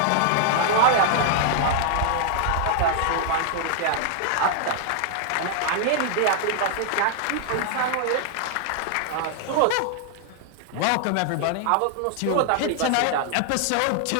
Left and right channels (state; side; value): different; both; correlation 0.00